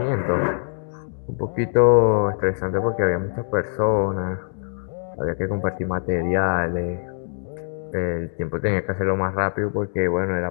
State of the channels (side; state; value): right; silent; digital silence